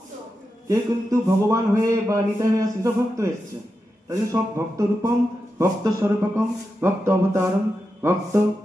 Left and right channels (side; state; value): both; normal; correlation 0.89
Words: কেউ কিন্তু ভগবান হয়ে বা নিতাই হয়ে আসছে, সব ভক্ত হয়ে এসছে। তাই জন্য সব ভক্ত রূপম, ভক্ত স্বরূপকম, ভক্ত অবতারম, ভক্ত